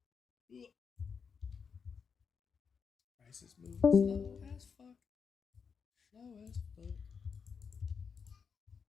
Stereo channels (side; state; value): right; quieter; 6.1 dB